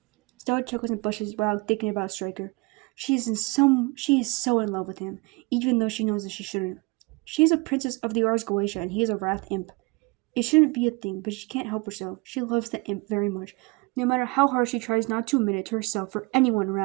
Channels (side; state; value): left; quieter; 27.0 dB